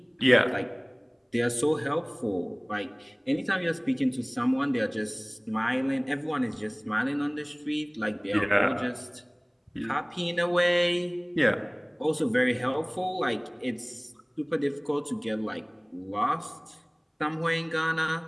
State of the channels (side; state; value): both; identical; correlation 1.00